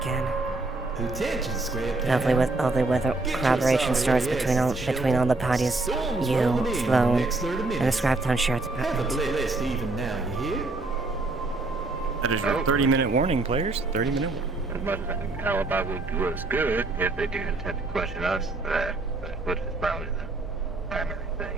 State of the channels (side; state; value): left; quieter; 3.2 dB